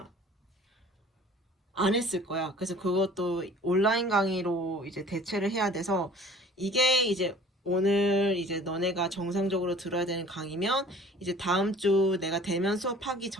안 했을 거야. 그래서 그것도 온라인 강의로 이제 대체를 해야 돼서 이게 이제 오늘 이제 너네가 정상적으로 들어야 되는 강의면 이제 다음 주 내가 대면 수업하기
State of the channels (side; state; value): both; normal; correlation 0.48